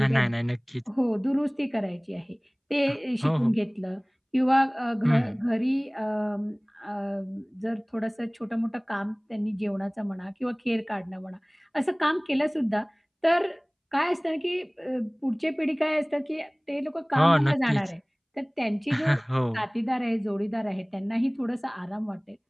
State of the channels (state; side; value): identical; both; correlation 1.00